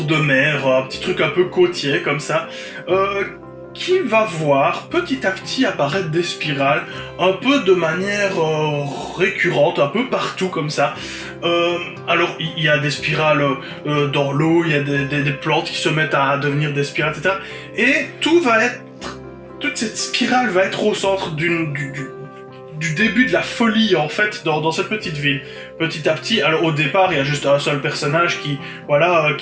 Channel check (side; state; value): both; identical; correlation 1.00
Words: de mer, un petit truc un peu côtier comme ça, qui va voir petit à petit apparaître des spirales, un peu de manière récurrente, un peu partout comme ça. Alors, il y a des spirales dans l'eau, il y a des plantes qui se mettent à devenir des spirales, etc. Et toute cette spirale va être au centre du début de la folie en fait dans cette petite ville. Petit à petit, alors au départ il y a juste un seul personnage qui